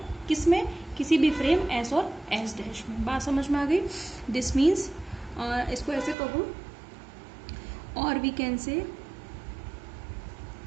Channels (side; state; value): left; drops out; at 6.2 s